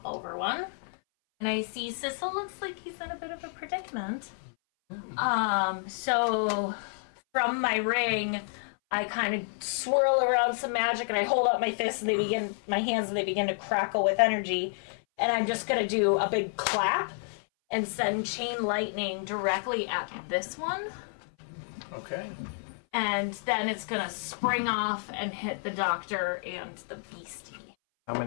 over one. And I see Sissel looks like he's in a bit of a predicament. So from my ring, I kind of swirl around some magic and I hold out my fists and my hands and they begin to crackle with energy. And I'm just gonna do a big clap and send chain lightning directly at this one. Okay. And then it's gonna spring off and hit the doctor and the beastie. How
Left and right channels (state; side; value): silent; right; 58 dB below the other